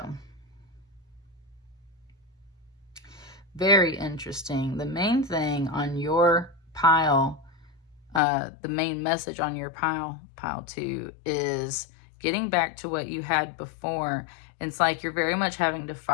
very interesting. The main thing on your pile, the main message on your pile 2, is getting back to what you had before. It's like you're very much having to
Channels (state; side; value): drops out; right; at 8.2 s